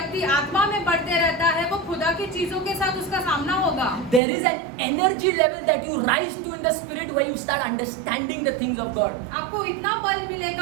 आत्मा में बढ़ते रहता है वो खुदा की चीजों के साथ उसका सामना होगा। There is an energy level that you rise to in the spirit where you start understanding the things of God. आपको इतना बल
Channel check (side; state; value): left; drops out; at 4.2 s